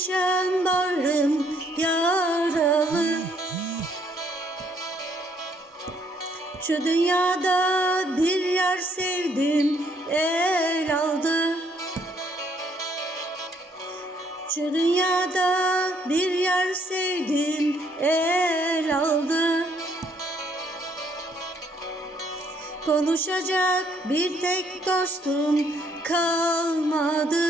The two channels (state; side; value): normal; both; correlation 0.68